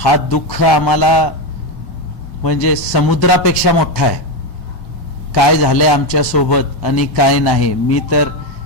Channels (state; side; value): late; right; 1.3 ms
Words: दुःख आम्हाला म्हणजे समुद्रापेक्षा मोठा आहे. काय झालंय आमच्या सोबत आणि काय नाही. मी तर